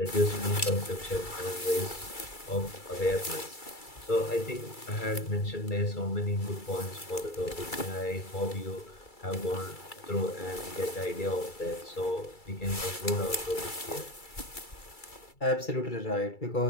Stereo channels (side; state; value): right; late; 2.3 ms